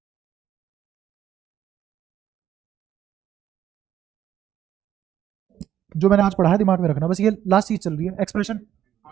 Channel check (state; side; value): quieter; left; 10.8 dB